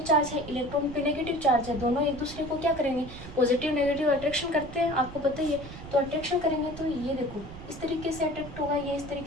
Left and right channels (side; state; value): right; noise; rumble, 13 dB below the sound